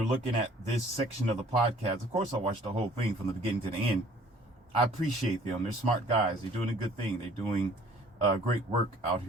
looking at this section of the podcast, of course I watched the whole thing from the beginning to the end. I appreciate them. They're smart guys. They're doing a good thing. They're doing great work out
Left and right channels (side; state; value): both; normal; correlation 0.55